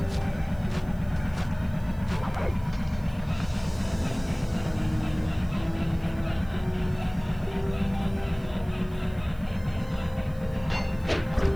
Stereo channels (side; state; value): right; noise; hiss, 26 dB below the sound